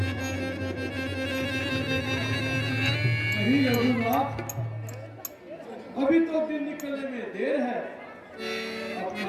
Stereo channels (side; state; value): both; identical; correlation 1.00